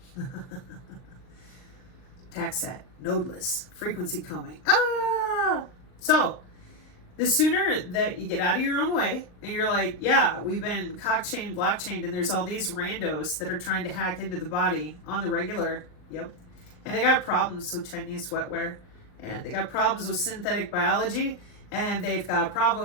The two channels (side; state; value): right; late; 39 ms